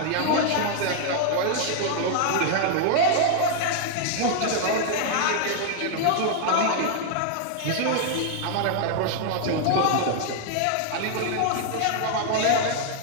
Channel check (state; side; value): different; both; correlation 0.00